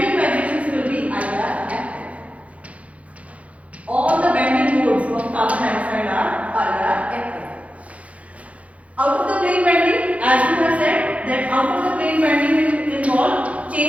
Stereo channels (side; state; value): left; late; 0.065 ms